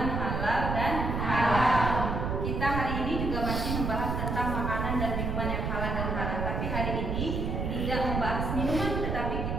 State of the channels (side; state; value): right; noise; rumble, 1 dB below the sound